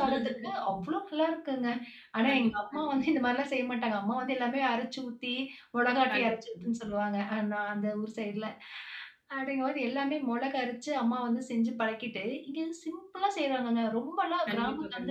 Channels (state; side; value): identical; both; correlation 1.00